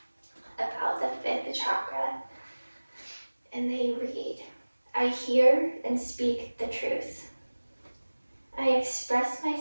about the fifth chakra. And they read, I hear and speak the truth. I express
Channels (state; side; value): inverted; both; correlation -1.00